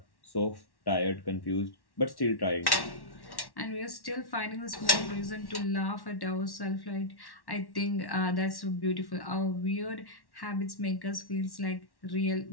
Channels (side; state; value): right; late; 1.1 ms